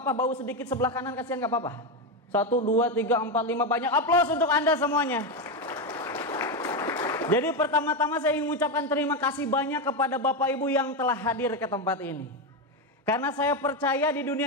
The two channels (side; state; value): both; normal; correlation 0.10